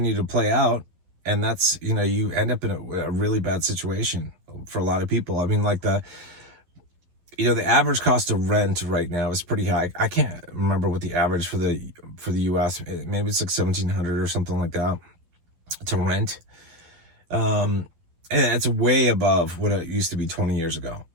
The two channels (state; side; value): late; left; 12 ms